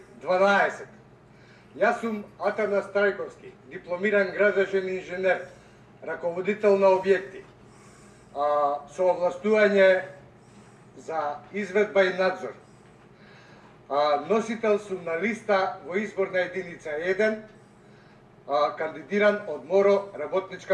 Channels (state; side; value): identical; both; correlation 1.00